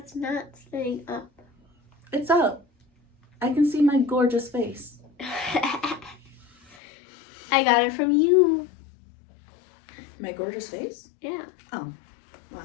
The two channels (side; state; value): right; drops out; at 6.8 s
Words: not staying up. It's up. I can see my gorgeous face. I got it from you. My gorgeous face? Yeah. Oh, well,